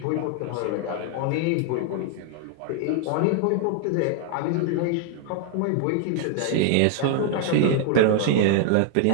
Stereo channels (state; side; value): different; both; correlation 0.00